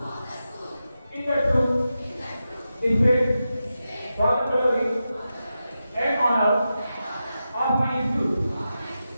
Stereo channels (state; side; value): inverted; both; correlation -0.90